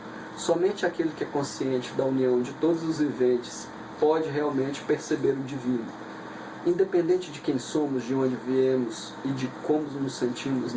Somente aquele que é consciente da união de todos os viventes pode realmente perceber o divino. Independente de quem somos, de onde viemos e de como nos sentimos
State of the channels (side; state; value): both; identical; correlation 1.00